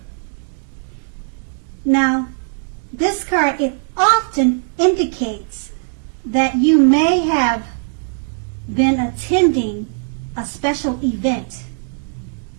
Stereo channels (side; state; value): left; silent; digital silence